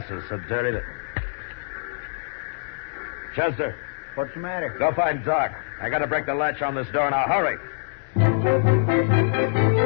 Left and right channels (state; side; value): silent; right; digital silence